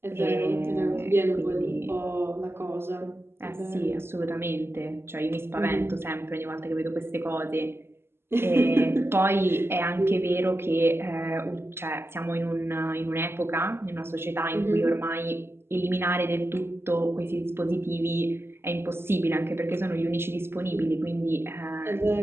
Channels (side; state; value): left; late; 0.12 ms